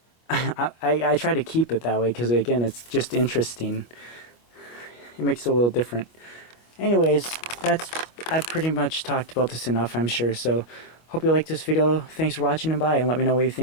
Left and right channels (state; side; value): late; right; 25 ms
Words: I try to keep it that way because, again, it's just interesting. It makes it a little different. Anyways, I've pretty much talked about this enough, I'm sure. So hope you liked this video. Thanks for watching, and bye, and let me know what you